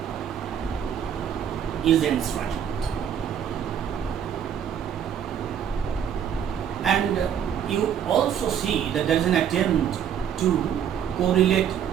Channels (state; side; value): quieter; left; 8.9 dB